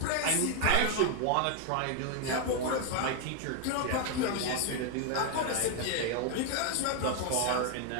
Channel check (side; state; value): both; different; correlation 0.01